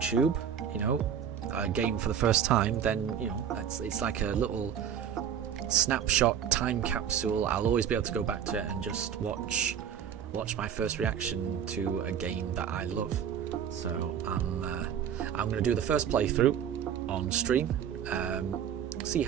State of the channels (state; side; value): quieter; left; 8.6 dB